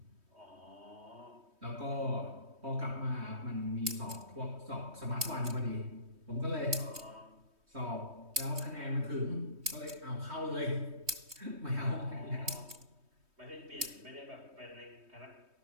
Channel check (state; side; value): late; left; 3.2 ms